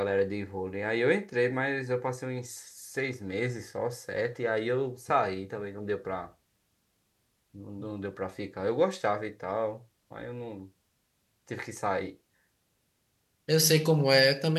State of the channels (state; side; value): identical; both; correlation 1.00